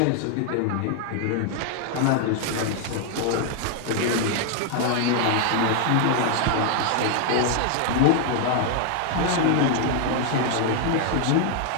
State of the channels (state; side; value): different; both; correlation 0.00